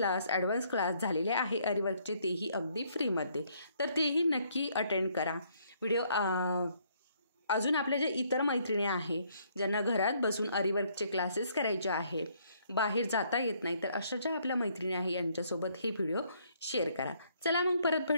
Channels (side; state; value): both; inverted; correlation -0.68